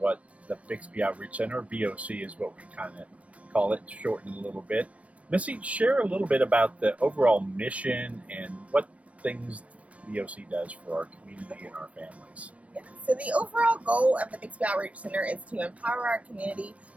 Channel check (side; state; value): left; late; 0.065 ms